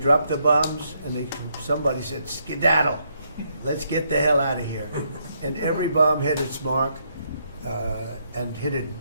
the bombs, and somebody said, skedaddle. Let's get the hell out of here. And every bomb hit its mark and hit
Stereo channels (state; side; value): inverted; both; correlation -0.75